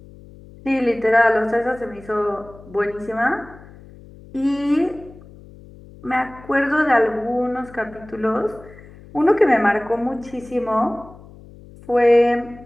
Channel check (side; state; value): left; noise; hum, 21 dB below the sound